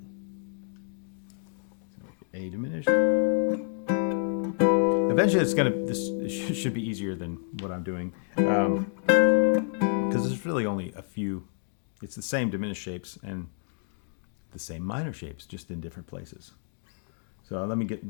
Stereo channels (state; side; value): silent; right; 59 dB below the other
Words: So A diminished. Eventually, this should be easier than what I'm doing, because there's really only a few. It's the same diminished shapes and the same minor shapes, just in different places. So let me